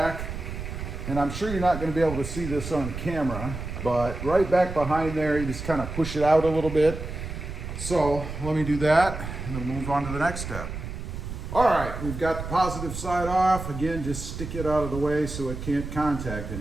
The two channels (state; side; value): noise; right; rumble, 7 dB below the sound